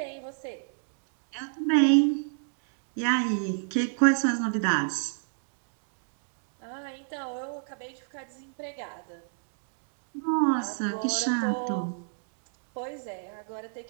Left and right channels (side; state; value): left; silent; digital silence